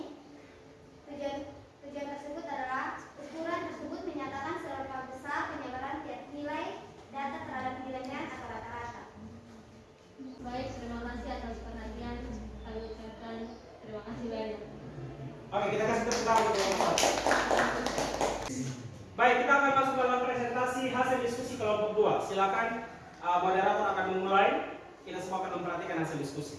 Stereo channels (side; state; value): both; identical; correlation 1.00